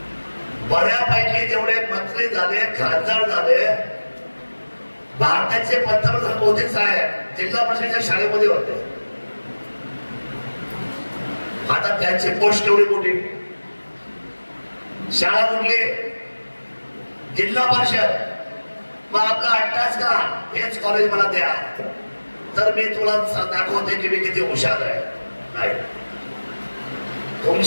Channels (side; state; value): both; inverted; correlation -1.00